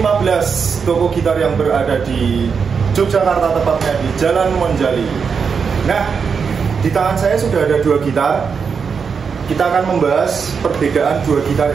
toko gitar yang berada di Yogyakarta, tepatnya di Jalan Monjali. Nah, di tangan saya sudah ada dua gitar. Kita akan membahas perbedaan dua gitar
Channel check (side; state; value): left; quieter; 6.0 dB